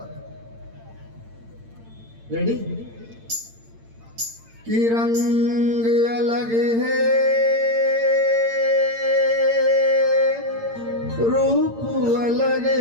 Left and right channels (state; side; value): late; left; 8.8 ms